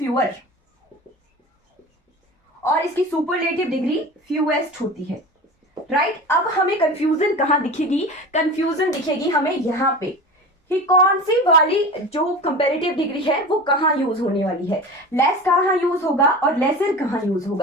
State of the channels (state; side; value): normal; both; correlation 0.32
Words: और इसकी सुपरलेटिव डिग्री फ्यूएस्ट होती है। राइट, अब हमें कंफ्यूजन कहां दिखेगी? कंफ्यूजन दिखेगी हमें यहां पे कि कौन सी वाली जो कंपैरेटिव डिग्री है वो कहां यूज होने वाली है। लेस कहां यूज होगा और लेसर कहां यूज